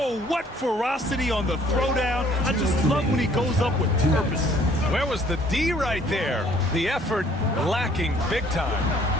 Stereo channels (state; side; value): normal; both; correlation 0.59